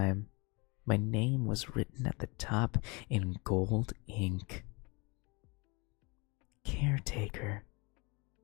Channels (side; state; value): right; quieter; 28.0 dB